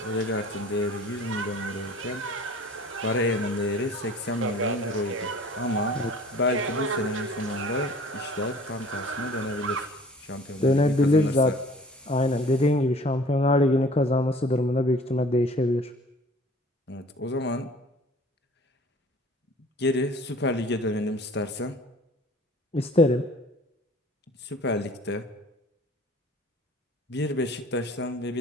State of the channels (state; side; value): normal; both; correlation 0.48